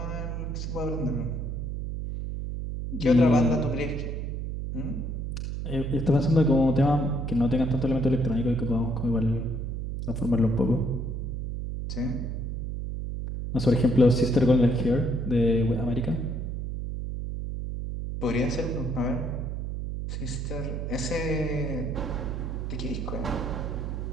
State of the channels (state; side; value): noise; right; hum, 4 dB below the sound